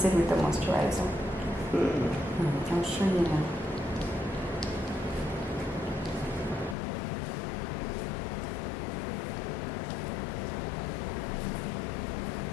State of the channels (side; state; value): right; drops out; at 6.8 s